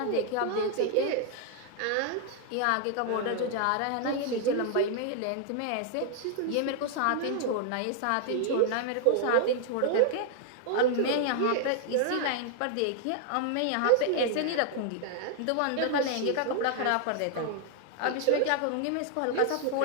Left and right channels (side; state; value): both; different; correlation 0.00